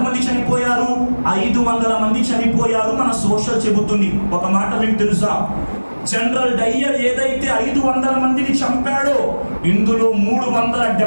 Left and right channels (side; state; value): both; inverted; correlation -1.00